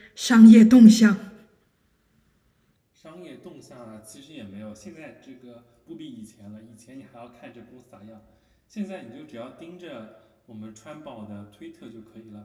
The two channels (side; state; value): both; identical; correlation 1.00